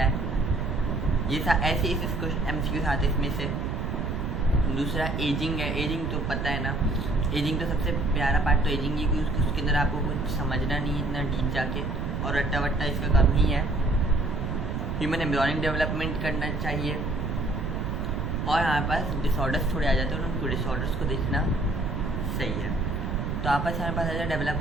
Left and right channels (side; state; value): right; noise; rumble, 2 dB below the sound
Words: है, ये ऐसे एमसीक्यूज आते हैं इसमें से। दूसरा एजिंग है, एजिंग तो पता है ना, एजिंग तो सबसे प्यारा पार्ट तो एजिंग ही, क्योंकि उसके अंदर आपको कुछ समझना नहीं इतना डीप जाके, और रट्टा वट्टा इसका कम ही है। ह्यूमन एम्ब्रियोनिक डेवलपमेंट करना चाहिए, और हमारे पास डिसऑर्डर्स थोड़े आ जाते हैं, उनको डिसऑर्डर्स को देखना सही है। तो आपस हमारे पास आ जाए,